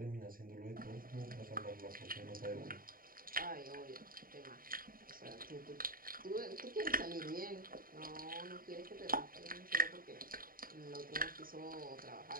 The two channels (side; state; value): left; late; 0.41 ms